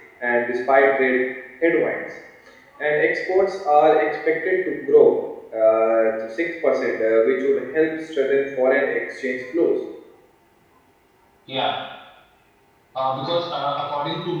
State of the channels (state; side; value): identical; both; correlation 1.00